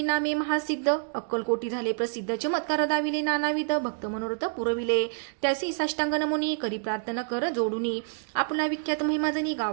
नामे महासिद्ध. अक्कलकोटी झाले प्रसिद्ध चमत्कार दाविले नानाविध भक्त मनोरथ पुरविले त्यासी साष्टांग नमुनी करी प्रार्थना कर जोडुनी आपला विख्यात महिमाजनी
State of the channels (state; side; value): silent; left; digital silence